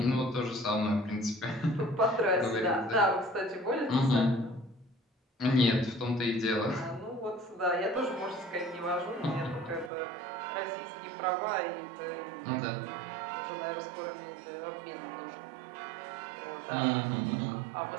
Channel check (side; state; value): left; drops out; at 9.9 s